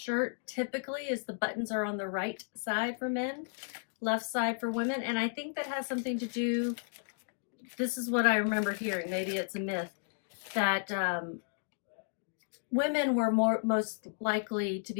typically is the buttons are on the right side for men, left side for women. And I think that has something to do, this is what I remember hearing, maybe it's a myth, that women were most likely to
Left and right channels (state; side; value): silent; right; digital silence